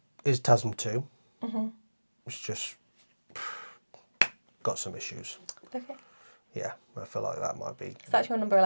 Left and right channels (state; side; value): inverted; both; correlation -1.00